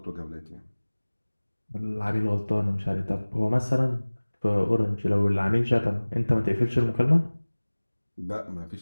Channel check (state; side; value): inverted; both; correlation -1.00